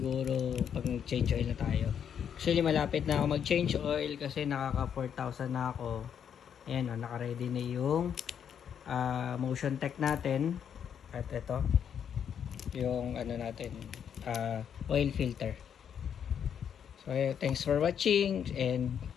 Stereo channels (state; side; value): quieter; right; 8.3 dB